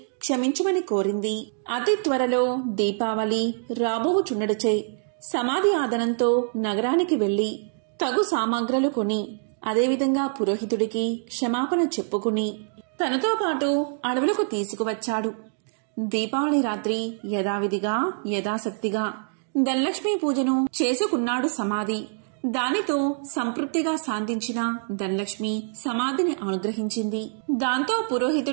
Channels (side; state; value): left; silent; 62 dB below the other